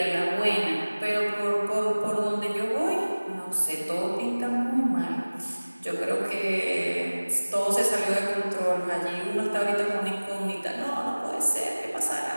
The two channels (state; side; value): inverted; both; correlation -1.00